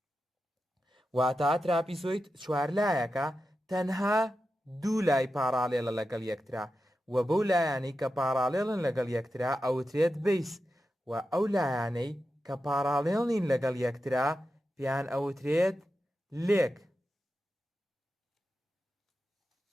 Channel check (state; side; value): normal; both; correlation 0.91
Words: واتە trapezoid چوار لایەکە تەنها دوو لای پاراڵێڵە لەگەڵ یەکترا و بەو لایانەی کە پاراڵێڵن لەگەڵ یەکترا ئەوترێت بیس و ئەو لایانەی کە پاراڵێڵ نین لەگەڵ یەکترا پیان ئەوترێت لێک.